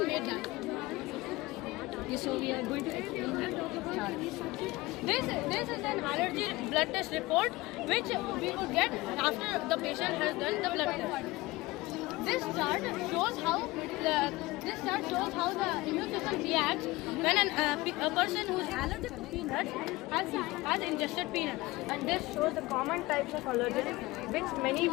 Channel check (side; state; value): right; quieter; 20.5 dB